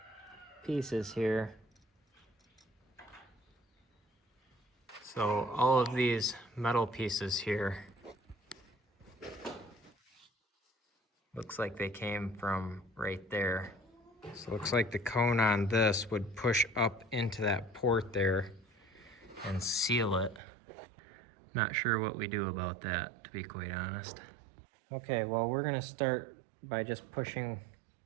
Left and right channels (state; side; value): drops out; left; at 20.4 s